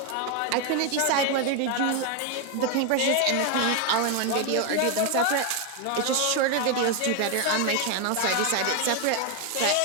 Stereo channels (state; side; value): different; both; correlation 0.01